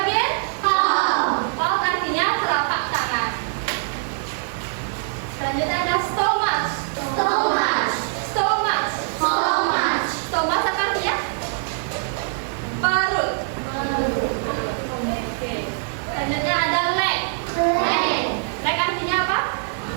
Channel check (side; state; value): left; silent; digital silence